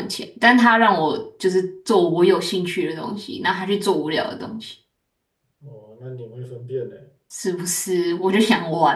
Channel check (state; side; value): identical; both; correlation 1.00